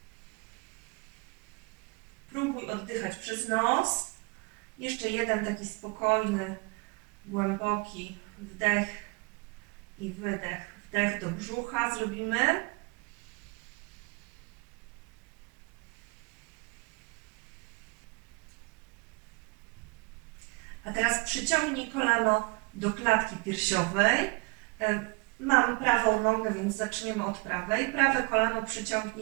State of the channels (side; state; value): left; quieter; 28.0 dB